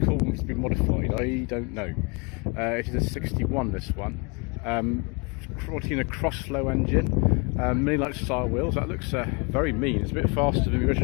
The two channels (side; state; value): right; quieter; 31.5 dB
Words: call them to be modified? I don't know. It is a 61, this one. Cortina cross-flow engine, mini-light style wheels. That looks very mean. It's a bit faster than the